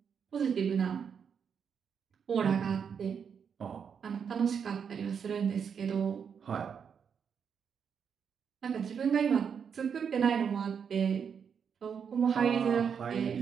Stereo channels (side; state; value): left; quieter; 7.0 dB